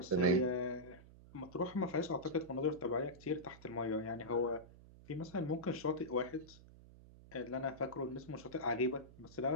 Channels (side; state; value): right; noise; hum, 20 dB below the sound